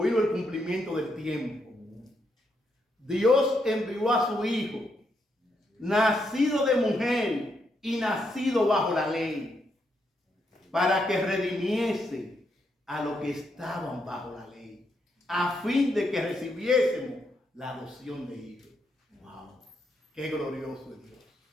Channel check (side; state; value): both; normal; correlation 0.79